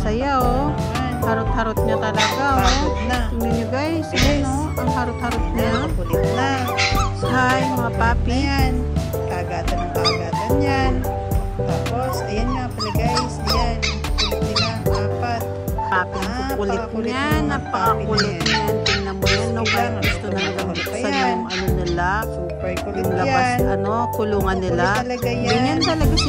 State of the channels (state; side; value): identical; both; correlation 1.00